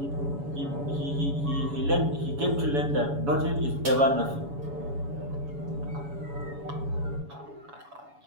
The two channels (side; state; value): left; late; 7.1 ms